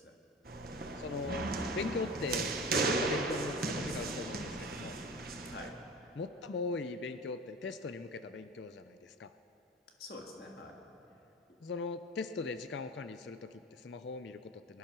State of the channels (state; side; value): normal; both; correlation 0.36